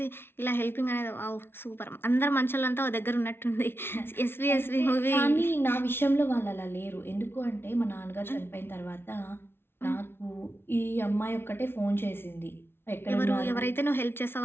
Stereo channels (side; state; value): right; late; 0.11 ms